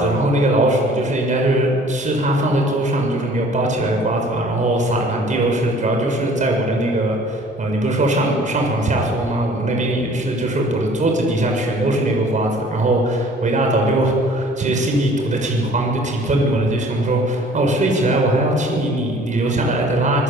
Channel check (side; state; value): both; normal; correlation 0.52